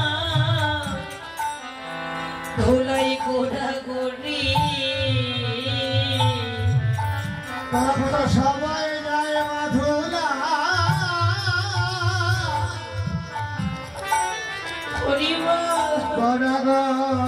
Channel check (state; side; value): identical; both; correlation 1.00